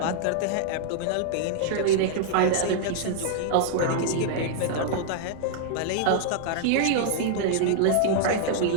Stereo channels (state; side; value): different; both; correlation -0.01